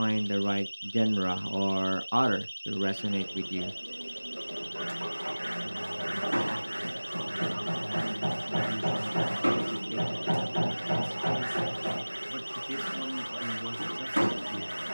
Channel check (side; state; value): both; inverted; correlation -1.00